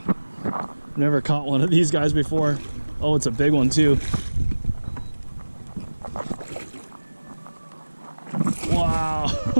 Never caught one of these guys before. Oh, it's a big one too. Wow.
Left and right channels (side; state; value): both; inverted; correlation -1.00